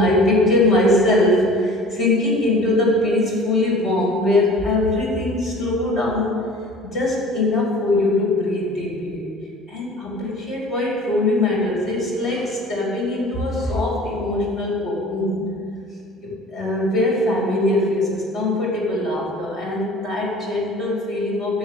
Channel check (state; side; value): normal; both; correlation 0.45